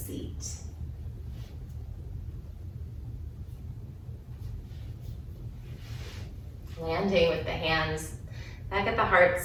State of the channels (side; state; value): both; identical; correlation 1.00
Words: Landing with the hands back at the heart